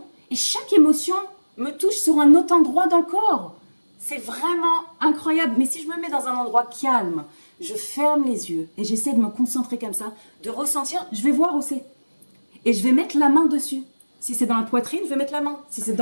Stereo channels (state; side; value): inverted; both; correlation -1.00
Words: Et chaque émotion me touche sur un autre endroit dans le corps. C'est vraiment incroyable. Mais si je me mets dans un endroit calme, je ferme les yeux et j'essaie de me concentrer comme ça, de ressentir, je vais voir où c'est. Et je vais mettre la main dessus. Si c'est dans la poitrine, je vais mettre la main. Si c'est